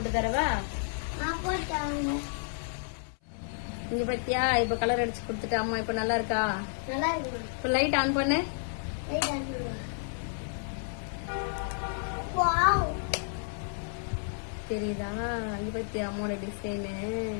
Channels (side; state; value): right; silent; 57 dB below the other